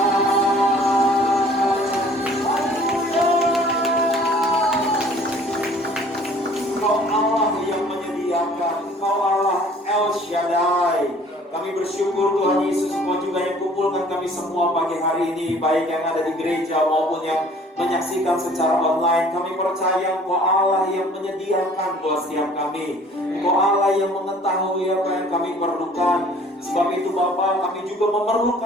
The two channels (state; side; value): normal; both; correlation 0.53